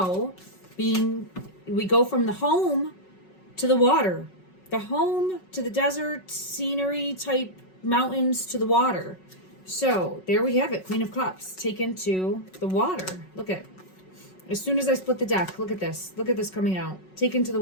we go from the home to the water, the home to the desert scenery type mountains to the water. So there we have it, Queen of Cups taken to the water. Look at, as soon as I split the deck, look at this coming out, taken to the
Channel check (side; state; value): right; late; 5.4 ms